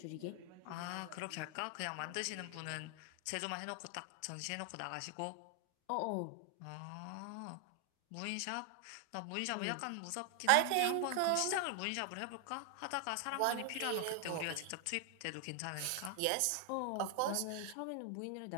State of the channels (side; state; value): both; different; correlation 0.00